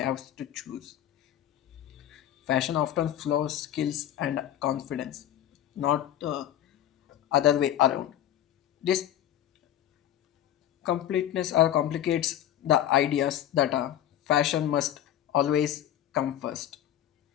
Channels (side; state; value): right; quieter; 11.6 dB